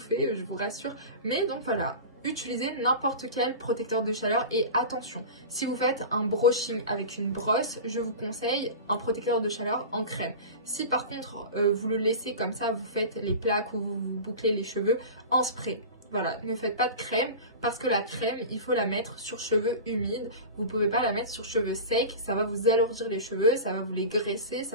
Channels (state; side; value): inverted; both; correlation -0.31